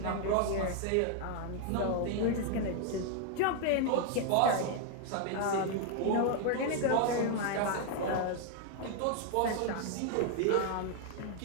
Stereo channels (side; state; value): both; different; correlation 0.00